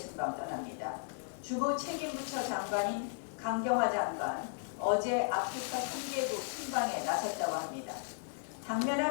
떠납니다. 주무 책임부처 장관인 강경화 장관 어제 아프리카 3개국 순방에 나섰다고 합니다.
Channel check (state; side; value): silent; right; digital silence